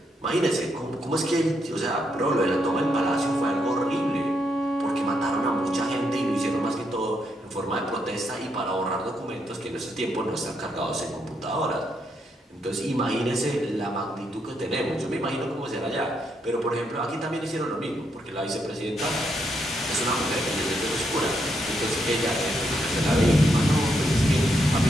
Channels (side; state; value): both; normal; correlation 0.78